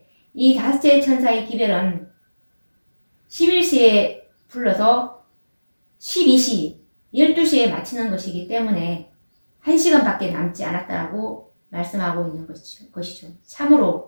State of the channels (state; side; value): inverted; both; correlation -1.00